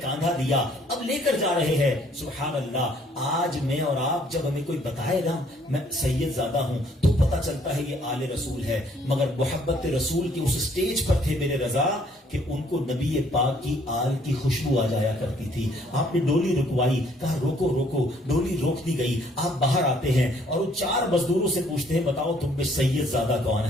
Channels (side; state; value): both; normal; correlation 0.63